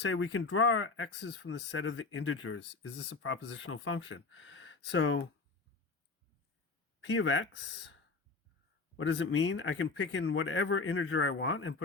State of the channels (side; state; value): right; quieter; 4.0 dB